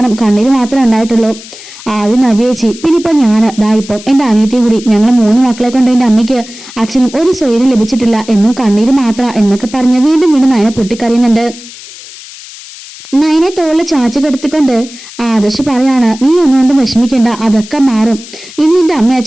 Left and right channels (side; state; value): left; noise; hiss, 17 dB below the sound